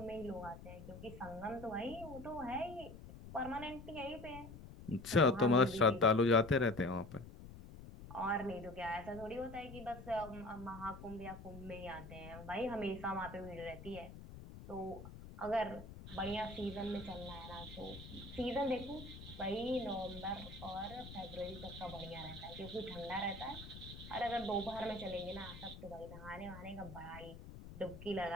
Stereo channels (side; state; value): left; noise; rumble, 13 dB below the sound